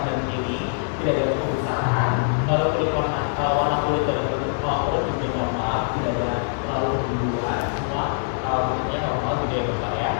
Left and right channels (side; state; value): right; silent; digital silence